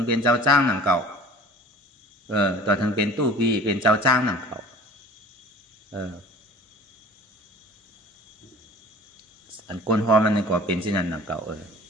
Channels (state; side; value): normal; both; correlation 0.43